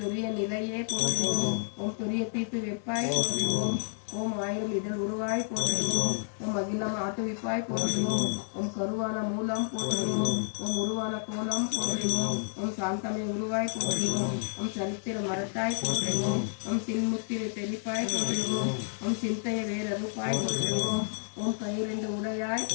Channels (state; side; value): silent; right; digital silence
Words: தவிப்பாய் போற்றுவோம். ஓம் ஆயிரம் இதழ் உருவாய் போற்றுவோம். ஓம் அகிலம் ஆட்டுவிப்பாய் போற்றுவோம். ஓம் கருவான மூலம் போற்றுவோம். ஓம் உருவான கோலம் போற்றுவோம். ஓம் சாந்தமை உருவாய் போற்றுவோம். ஓம் சரித்திர மரத்தாய் போற்றுவோம். ஓம் சின்முத்திரை தெளிப்பாய் போற்றுவோம். ஓம் சிந்தைய வேறறுப்பாய் போற்றுவோம். ஓம் கையிரண்டு உடையாய்